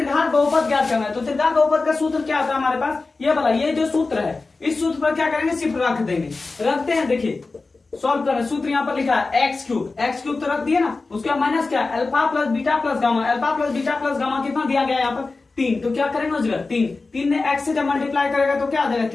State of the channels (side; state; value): right; quieter; 3.7 dB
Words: बहुपद ज्ञात करना है, तो त्रिघात बहुपद का सूत्र क्या होता है हमारे पास, ये वाला, ये जो सूत्र है इस सूत्र पर क्या करेंगे सिर्फ रख देंगे, रखते हैं। देखिए सॉल्व करें, सूत्र यहाँ पर लिखा है एक्स क्यूब तो रख दिया ना, उसका माइनस क्या alpha plus beta plus gamma, alpha plus beta plus gamma कितना दिया गया यहाँ पर 3, तो क्या करेंगे उस जगह 3 ने एक्स से जब मल्टीप्लाई करेगा तो क्या आ जाएगा